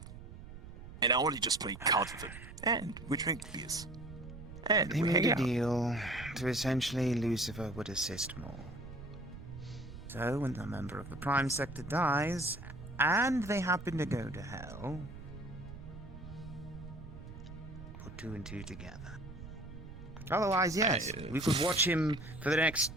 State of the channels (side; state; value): right; noise; rumble, 13 dB below the sound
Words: And I only just play cards with him, and we drink beers. And They we made hang a out. deal to essentially Lucifer would assist more. So when the member of the Prime Sector dies, and they happen to go to hell, put 2 and 2 together. Otherwise, yes, we could watch him for the next